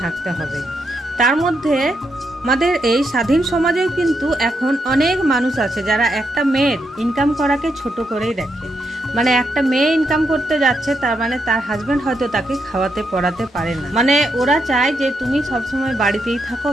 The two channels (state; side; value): normal; both; correlation 0.81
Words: থাকতে হবে। তার মধ্যে আমাদের এই স্বাধীন সমাজেও কিন্তু এখন অনেক মানুষ আছে যারা একটা মেয়ের ইনকাম করাকে ছোট করেই দেখে। মানে একটা মেয়ে ইনকাম করতে যাচ্ছে, তার মানে তার হাজবেন্ড হয়তো তাকে খাওয়াতে পড়াতে পারে না। মানে ওরা চায় যে তুমি সবসময় বাড়িতেই থাকো,